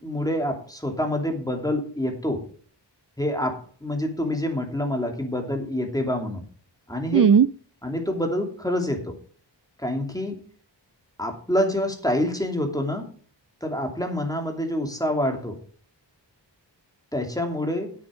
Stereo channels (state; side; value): normal; both; correlation 0.47